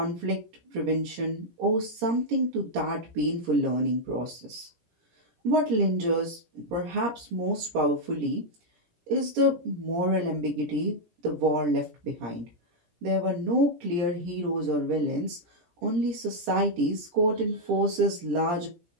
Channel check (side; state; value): left; late; 17 ms